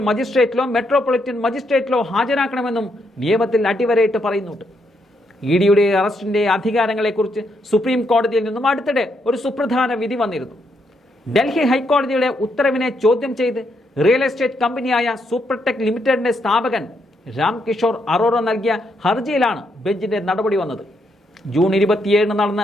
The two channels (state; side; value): normal; both; correlation 0.77